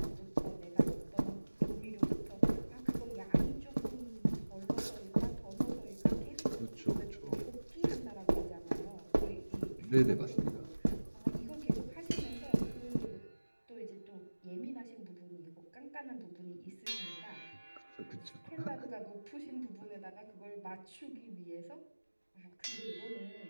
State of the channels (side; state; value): both; inverted; correlation -1.00